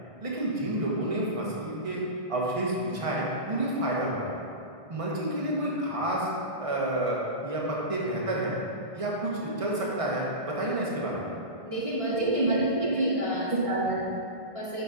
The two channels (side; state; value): left; late; 1.6 ms